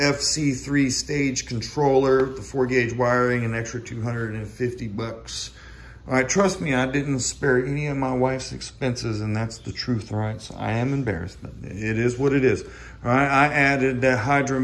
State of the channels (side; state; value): both; identical; correlation 1.00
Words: stage controller, the 4-gauge wiring, an extra 250 bucks. All right, trust me, I didn't spare any of my wife's expenses, and that's the truth, all right? So I am embarrassed, but it is what it is. All right, I added the